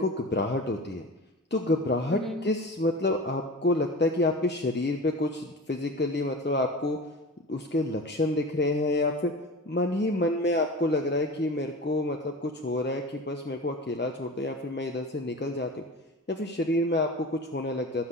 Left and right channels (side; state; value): both; normal; correlation 0.33